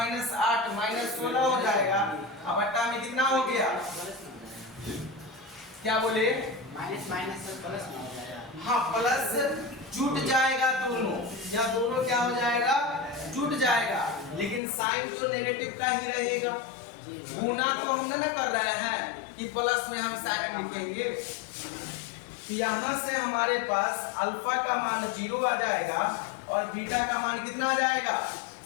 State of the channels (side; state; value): right; drops out; at 14.6 s